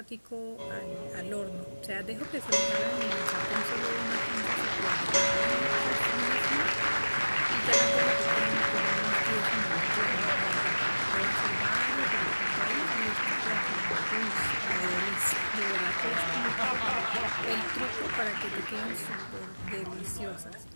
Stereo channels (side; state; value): both; inverted; correlation -1.00